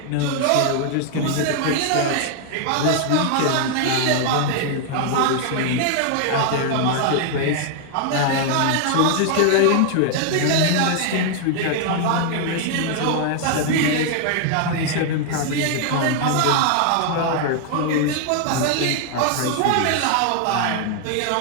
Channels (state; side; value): different; both; correlation 0.00